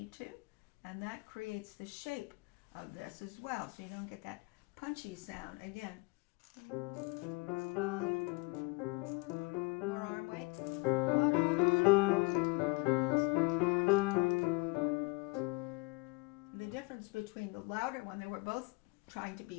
to, and that creates the shape of this as well, so you don't get that punchy sound. Again, more arm weight. Between the louder one, they were both trying to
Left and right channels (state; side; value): quieter; right; 27.4 dB